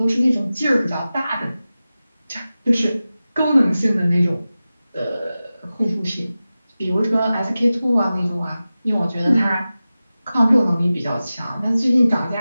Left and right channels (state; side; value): inverted; both; correlation -0.95